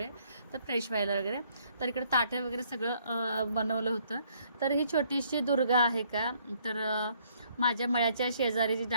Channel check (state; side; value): inverted; both; correlation -0.66